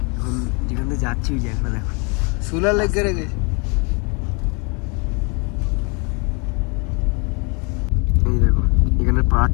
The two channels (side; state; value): right; quieter; 32.6 dB